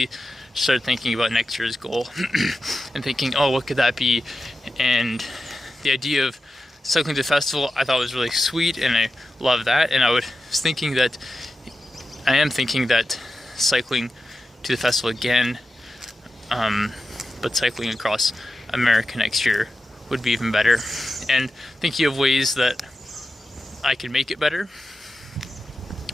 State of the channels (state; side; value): normal; both; correlation 0.92